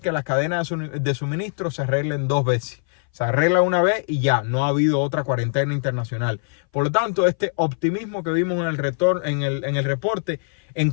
que las cadenas de suministro se arreglen 2 veces. Se arregla una vez y ya, no ha habido otra cuarentena internacional. Por lo tanto, este optimismo que vimos en el reporte en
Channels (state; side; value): silent; right; 60 dB below the other